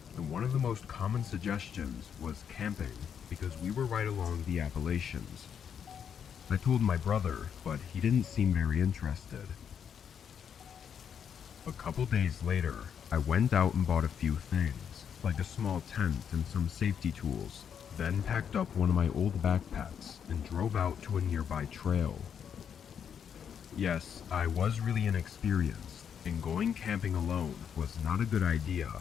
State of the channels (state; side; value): quieter; right; 7.9 dB